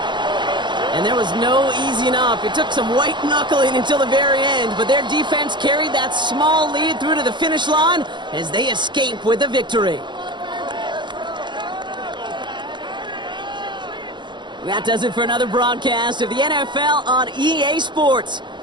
And there was no easing up. It took some white knuckling until the very end, but their defense carried that small lead through to the finish line as they escape with the victory. That does it for another broadcast of the NFL on EA Sports.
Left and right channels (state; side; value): late; left; 0.22 ms